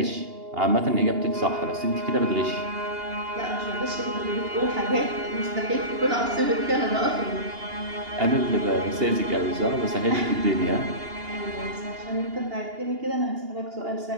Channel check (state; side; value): late; left; 2.8 ms